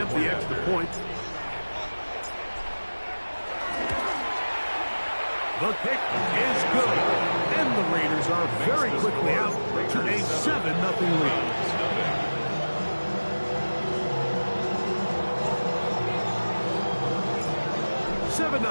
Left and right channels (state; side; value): inverted; both; correlation -1.00